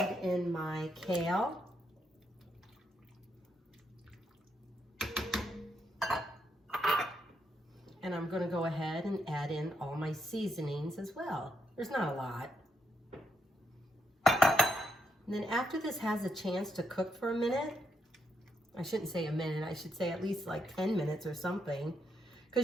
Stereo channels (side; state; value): both; normal; correlation 0.78